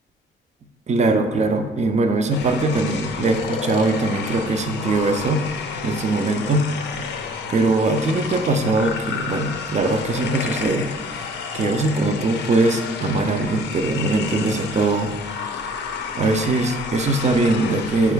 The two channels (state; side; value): normal; both; correlation 0.55